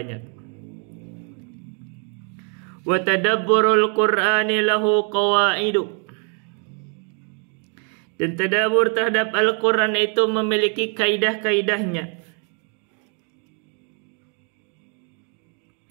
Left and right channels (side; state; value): left; quieter; 39.9 dB